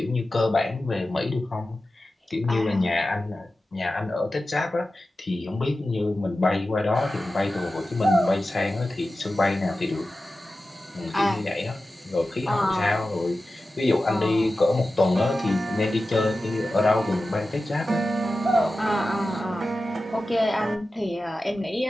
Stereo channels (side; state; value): both; normal; correlation 0.94